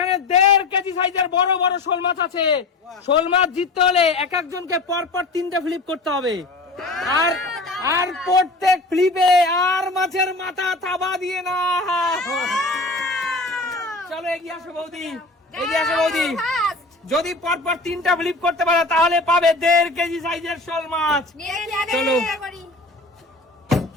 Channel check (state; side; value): quieter; right; 3.0 dB